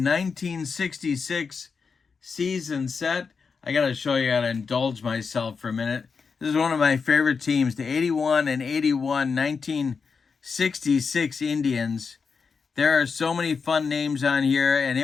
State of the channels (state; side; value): quieter; right; 5.4 dB